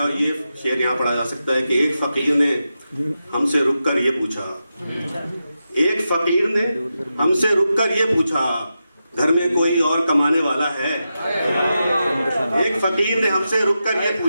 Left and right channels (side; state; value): both; inverted; correlation -0.89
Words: और ये शेर यहाँ पढ़ा जा सकता है कि एक फकीर ने हमसे रुककर ये पूछा, एक फकीर ने हमसे रुककर ये पूछा, घर में कोई और कमाने वाला है? एक फकीर ने हमसे रुककर ये